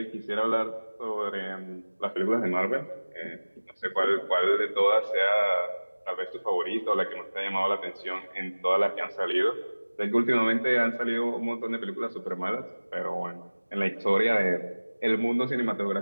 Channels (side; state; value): both; inverted; correlation -1.00